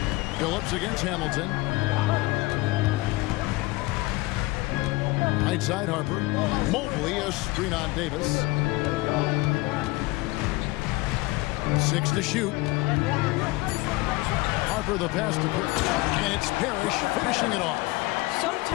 Billups against Hamilton. Right side Harper. Mobley a screen on Davis. 6 to shoot. Harper the pass to Parrish. And it's Parrish finishing it off.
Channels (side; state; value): right; quieter; 21.5 dB